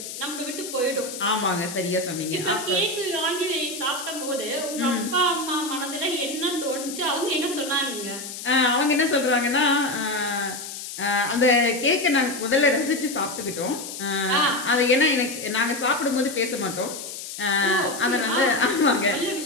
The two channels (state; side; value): noise; left; hiss, 9 dB below the sound